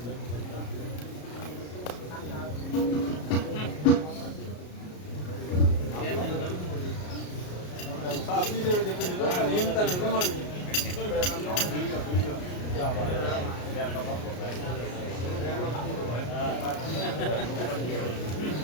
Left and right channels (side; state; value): right; late; 33 ms